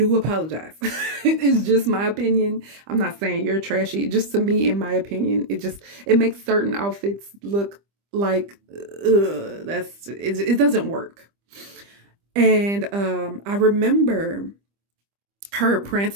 apologize. It's just my opinion. I'm not saying you're trashy. Just to me, in my opinion, it makes certain outfits look like it doesn't work. And I remember her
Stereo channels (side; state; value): left; late; 25 ms